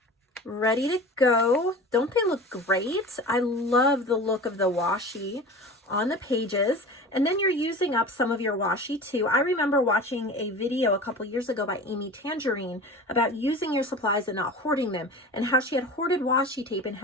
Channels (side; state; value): both; normal; correlation 0.36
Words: ready to go. Don't they look great? I love the look of the washi on the pages. And then you're using up some of your washi too. I remember watching a video a couple years ago by Amy Tangerine about using your supplies and not hoarding them, and how she had hoarded washi tape and